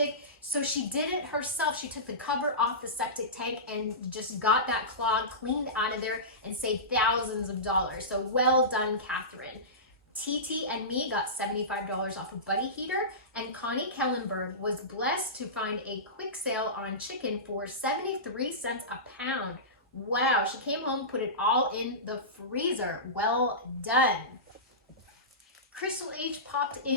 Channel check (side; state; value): both; normal; correlation -0.20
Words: so she did it herself. She took the cover off the septic tank and just got that clog cleaned out of there and saved thousands of dollars. So well done, Catherine. TT and me got $75 off a buddy heater, and Connie Kellenberg was blessed to find a quick sale on chicken for 73 cents a pound. Wow, she came home, put it all in the freezer. Well done. Crystal H popped